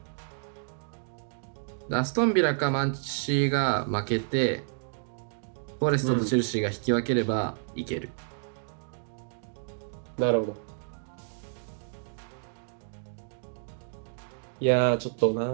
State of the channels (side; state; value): left; silent; digital silence